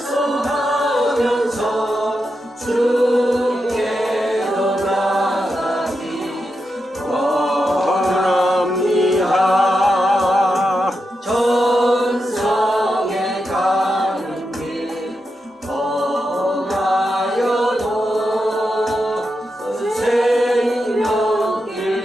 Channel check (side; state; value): both; normal; correlation 0.87